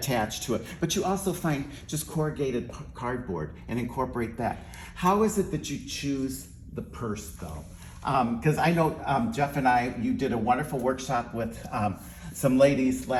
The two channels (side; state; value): both; identical; correlation 1.00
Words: to it. But you also find just corrugated cardboard and incorporate that. How is it that you choose the purse though? Because I know Jeff and you did a wonderful workshop with some ladies